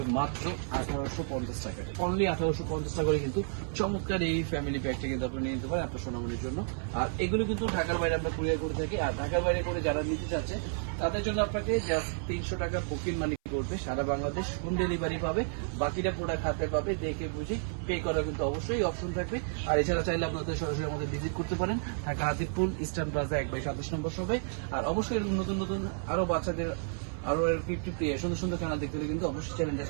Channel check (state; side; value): silent; left; 57 dB below the other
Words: মাত্র 1850 টাকা। অনলি 1850 টাকা করে কিন্তু চমৎকার এই ফ্যামিলি প্যাকটা কিন্তু আপনি নিয়ে নিতে পারেন আপনার সোনামণির জন্য। আর এগুলো কিন্তু ঢাকার বাইরে আমরা কুরিয়ার করে থাকি। আর ঢাকার বাইরে করে যারা নিতে চাচ্ছে তাদের জন্য আপনাকে জাস্ট 300 টাকা বুকিং মানি করবে, সারা বাংলাদেশ হোম ডেলিভারি পাবে, বাকিটা প্রোডাক্ট হাতে পাবে, দেখে বুঝে পে করার কিন্তু অবশ্যই অপশন থাকবে। আর এছাড়া চাইলে আপনাদের সরাসরি আমাদের ভিজিট করতে পারেন ঢাকা হাতিপুল ইস্টার্ন প্লাজা 1/27 নম্বর শপে। আর অবশ্যই এরকম নতুন নতুন আরো বাচ্চাদের আরো 50 সুন্দর সুন্দর চ্যানেল দেখতে হলে কিন্তু অবশ্যই চ্যানেলটা